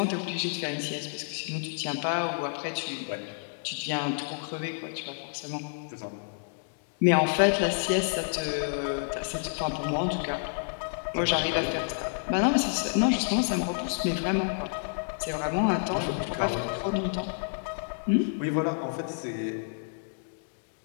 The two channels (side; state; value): right; silent; digital silence